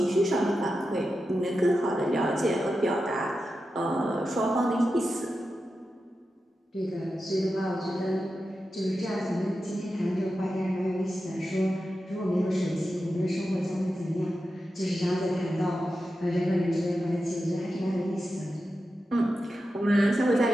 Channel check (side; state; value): both; normal; correlation 0.91